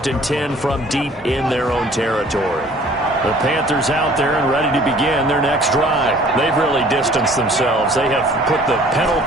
and 10 from deep in their own territory. The Panthers out there and ready to begin their next drive. They've really distanced themselves. They have put the pedal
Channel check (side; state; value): both; normal; correlation 0.53